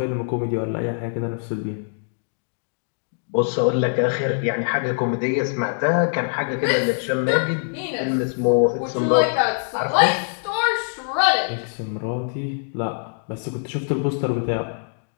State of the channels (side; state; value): right; silent; digital silence